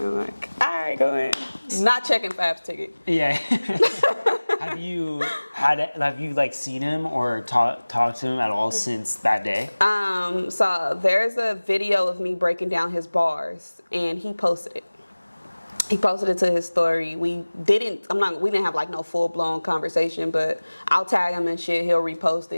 I'm like, all right, go in. Not checking Fab's ticket. Yeah. Have you like seen him or talked to him at all since that day? So there's a video of me breaking down his bars, and he posted it. He posted it to his story. We didn't have like no full blown conversation, but I'll tag him and shit. He'll repost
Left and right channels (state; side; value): inverted; both; correlation -1.00